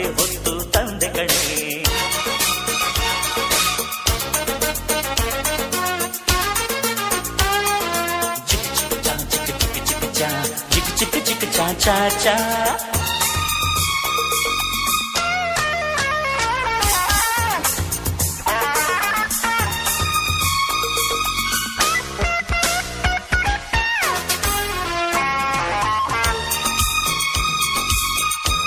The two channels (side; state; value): both; identical; correlation 1.00